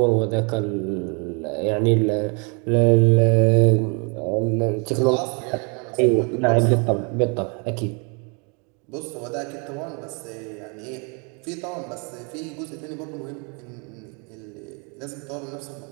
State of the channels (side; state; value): left; quieter; 34.6 dB